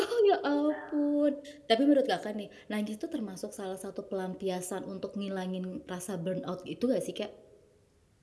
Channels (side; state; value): both; identical; correlation 1.00